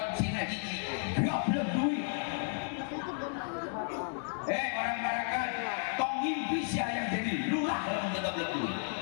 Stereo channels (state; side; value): silent; right; digital silence